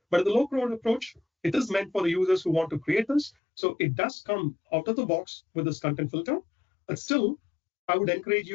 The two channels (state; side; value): drops out; right; at 3.3 s